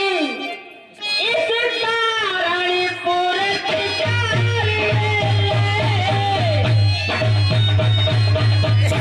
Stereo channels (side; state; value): both; identical; correlation 1.00